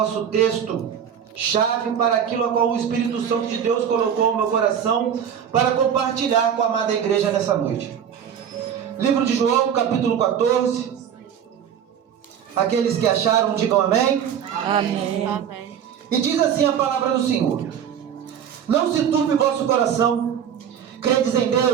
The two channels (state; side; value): quieter; left; 8.6 dB